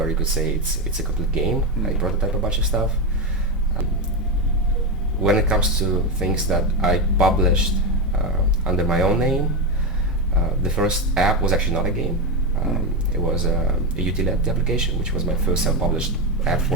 you could say it's a complete game. I prototype a bunch of stuff. When it comes to things that I published under my own name, the first app was actually not a game. It was a utility application, which was my first self-published app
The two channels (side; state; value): both; normal; correlation 0.11